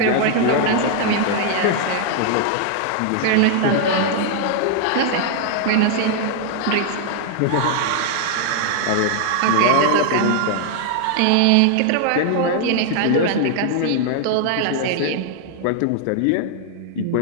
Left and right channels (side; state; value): both; different; correlation 0.00